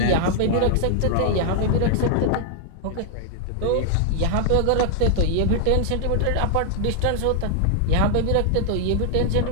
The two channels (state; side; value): different; both; correlation 0.00